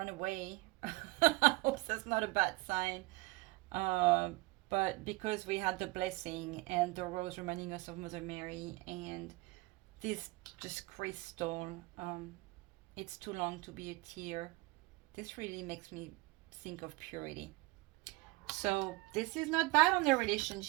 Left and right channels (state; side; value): quieter; left; 22.5 dB